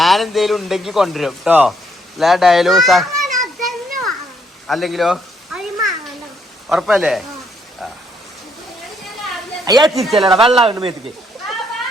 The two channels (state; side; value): normal; both; correlation 0.72